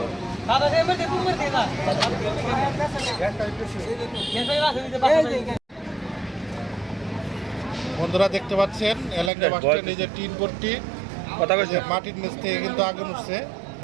বন্ধুরা দেখতে পাচ্ছেন এলাকায় বাসটা নিজের টিন ভর্তি কথা বলছে মাটির নিচ থেকে কিন্তু আগুন উঠছে।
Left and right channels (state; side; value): drops out; left; at 9.3 s